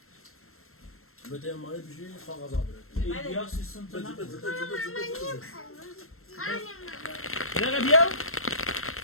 بده مال بشی کاغذ آبره بیا سیستم تو نه بده بیا بیا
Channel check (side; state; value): right; late; 0.62 ms